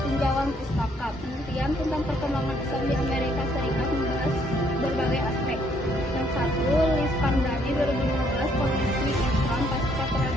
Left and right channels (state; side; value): normal; both; correlation 0.68